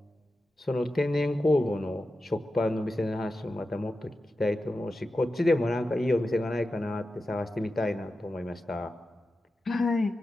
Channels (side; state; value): both; normal; correlation 0.92